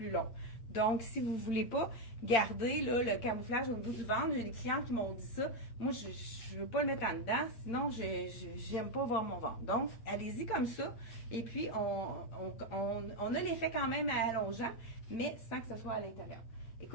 long. Donc, si vous ne voulez pas garder là, le camouflage au niveau du ventre, j'ai des clients qui m'ont dit ça. Moi, je ne veux pas le mettre en dedans, sinon, je n'aime pas voir mon ventre. Donc, allez-y comme ça. Et puis, on a l'effet quand même allongeant, mais sans que ce soit à l'intérieur.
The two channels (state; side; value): late; right; 8.8 ms